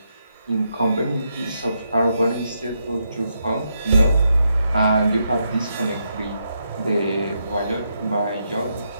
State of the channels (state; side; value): inverted; both; correlation -0.81